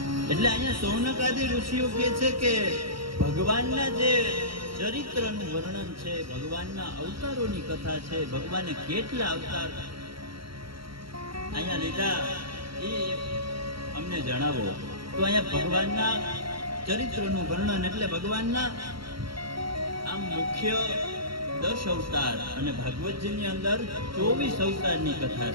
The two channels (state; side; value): late; left; 0.74 ms